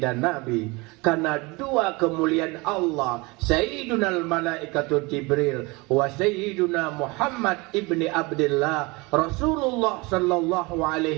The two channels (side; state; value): left; quieter; 25.4 dB